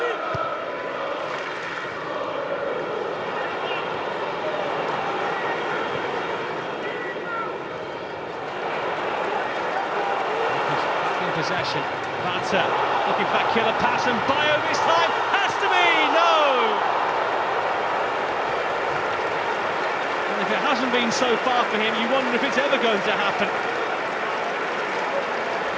Possession, Vata looking for that killer pass, and Bio this time has to be, no! And if it hasn't been so far for him, you wonder if it's ever going to happen.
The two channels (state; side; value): identical; both; correlation 1.00